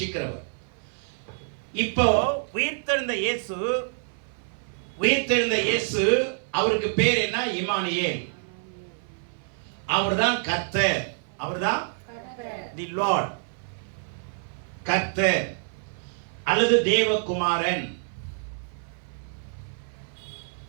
இப்போ உயிர்த்தெழுந்த இயேசு அவருக்கு பேர் என்ன? இம்மானுவேல். அவர்தான் கர்த்தர், அவர்தான் தி லார்ட், கர்த்தர் அல்லது தேவகுமாரன்.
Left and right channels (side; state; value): left; silent; 57 dB below the other